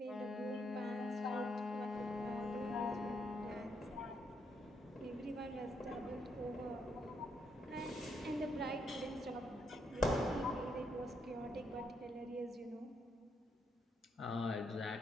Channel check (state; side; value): normal; both; correlation 0.77